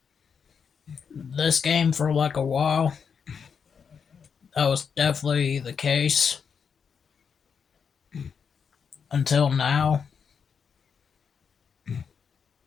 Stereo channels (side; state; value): right; quieter; 6.5 dB